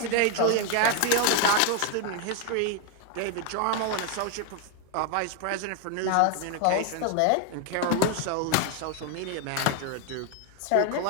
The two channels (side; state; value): both; different; correlation 0.01